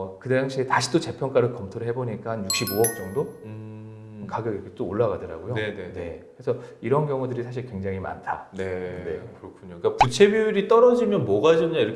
그 당시에 다시 또 재평가를 검토를 해보니까 한 65억 정도 가격이 이렇게 또 올라가더라고요. 네네. 네. 그래서 이런 경우들이 사실 굉장히 많다. 네, 네. 그렇군요. 그러니까 부채 비율이 떨어지면 뭐가 좋냐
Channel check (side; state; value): both; identical; correlation 1.00